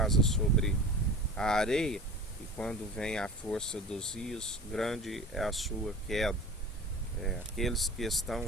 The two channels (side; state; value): both; normal; correlation 0.38